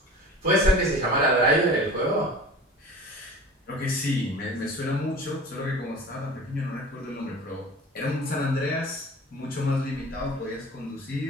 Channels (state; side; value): normal; both; correlation 0.39